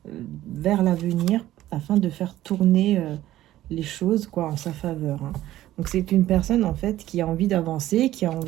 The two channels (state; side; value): quieter; left; 14.3 dB